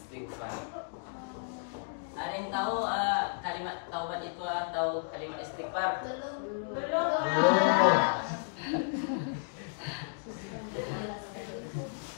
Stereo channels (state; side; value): silent; right; digital silence